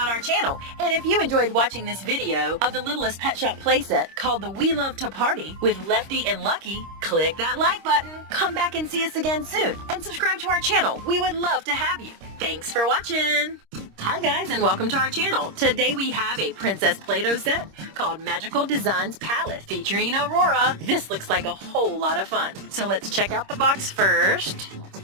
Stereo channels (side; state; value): left; late; 26 ms